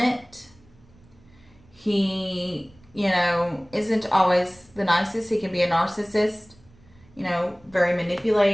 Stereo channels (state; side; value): noise; right; rumble, 28 dB below the sound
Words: He, isn't always the nicest. He can be a narcissist, very